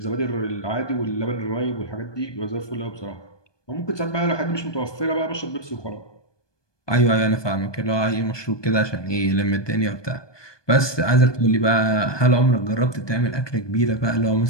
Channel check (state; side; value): late; right; 1.2 ms